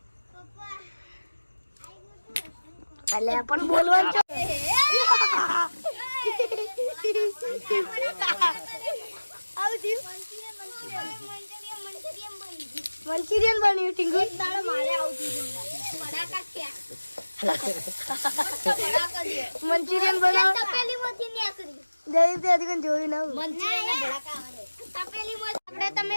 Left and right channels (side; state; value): both; inverted; correlation -1.00